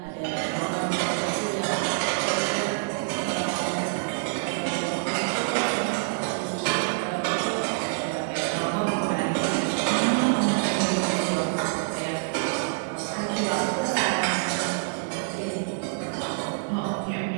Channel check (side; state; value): left; silent; digital silence